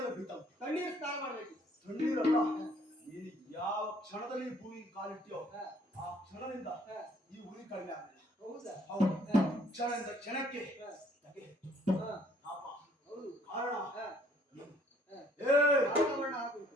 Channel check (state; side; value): normal; both; correlation 0.62